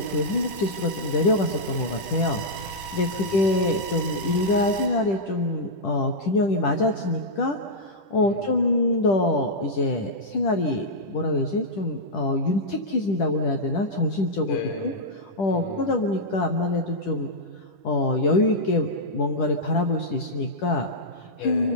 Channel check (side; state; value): right; late; 10 ms